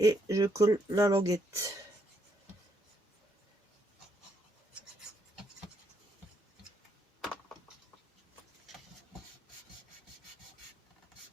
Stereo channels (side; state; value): both; normal; correlation 0.74